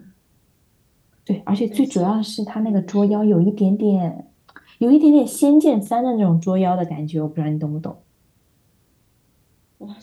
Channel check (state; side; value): identical; both; correlation 1.00